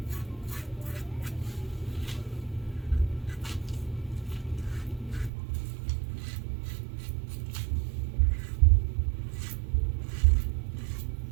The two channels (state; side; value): drops out; left; at 5.3 s